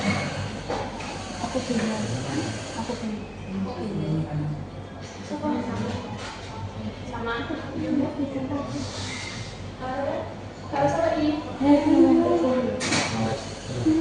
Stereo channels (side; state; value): both; identical; correlation 1.00